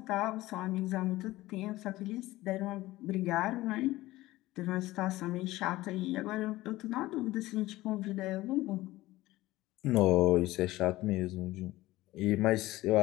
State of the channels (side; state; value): right; quieter; 17.7 dB